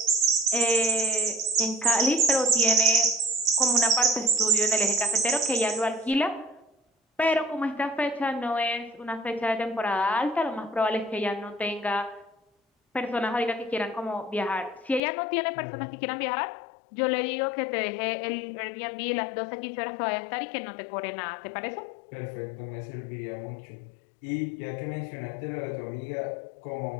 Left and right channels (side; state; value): right; drops out; at 15.0 s